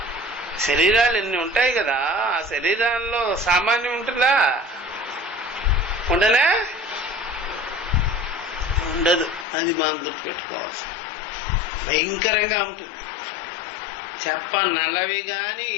శరీరాలు ఎన్ని ఉంటాయి కదా, ఆ శరీరాల్లో సామాన్యం ఉంటుందా? ఉండనే ఉండదు. అది మనం గుర్తుపెట్టుకోవచ్చు. భయంకరంగా ఉంటుంది. నల్లవి కానీ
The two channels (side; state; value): right; drops out; at 9.5 s